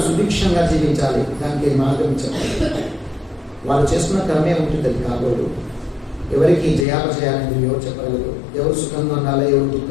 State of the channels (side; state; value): right; drops out; at 6.9 s